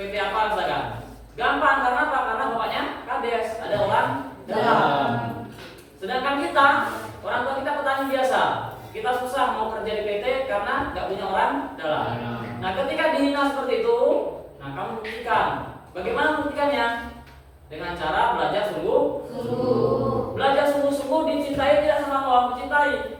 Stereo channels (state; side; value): identical; both; correlation 1.00